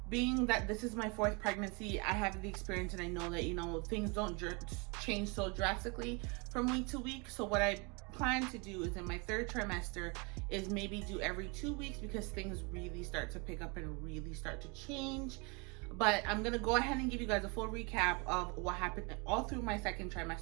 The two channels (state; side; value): quieter; left; 30.5 dB